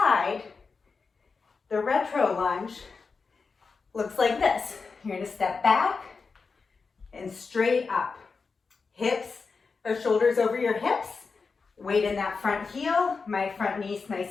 the retro lunge looks like this. You're gonna step back and straight up. Hips, or shoulders over your hips, weight in that front heel, my front knee's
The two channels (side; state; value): right; quieter; 4.7 dB